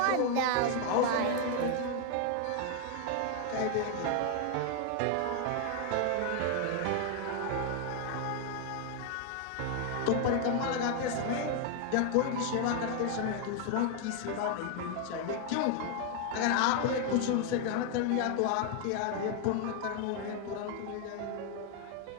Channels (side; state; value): both; different; correlation 0.00